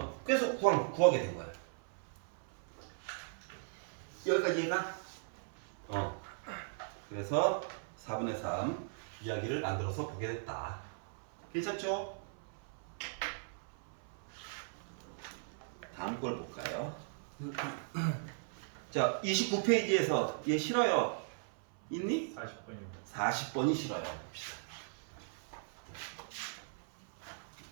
그래서 구하게 된 거야. 여기까지 이해가? 그래서 4분의 3 이야기를 만들어서 보게 됐다. 괜찮죠? 다음 걸 볼까요? 자, 29페이지에서 얘 싫어요. 있니? 40분입니다. 40번이 싫어요. 봅시다.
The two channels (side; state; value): left; silent; 52 dB below the other